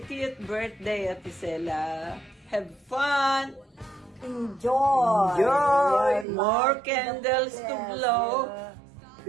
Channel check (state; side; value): drops out; left; at 6.2 s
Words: birthday, Ate Zella. Have fun. Enjoy. More candles to blow.